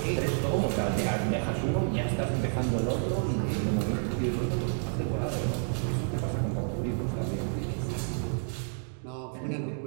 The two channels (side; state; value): left; silent; 58 dB below the other